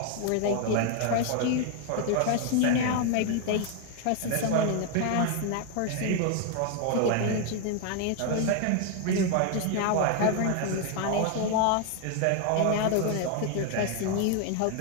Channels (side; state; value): both; different; correlation 0.01